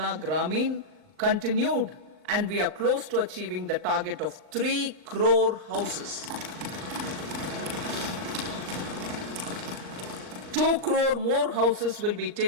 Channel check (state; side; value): late; left; 39 ms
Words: Gramin continued, and we are close to achieving the target of 3 crore houses. 2 crore more houses will be